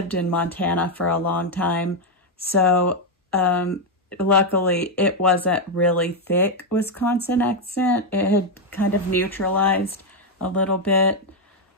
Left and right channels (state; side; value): normal; both; correlation 0.02